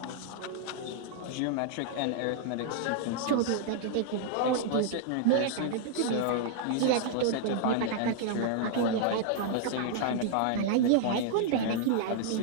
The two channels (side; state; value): both; different; correlation -0.01